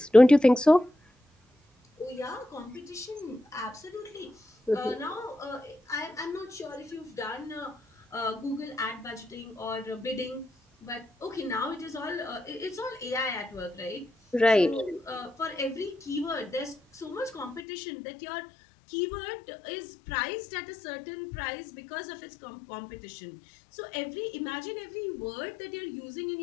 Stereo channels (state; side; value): drops out; right; at 17.6 s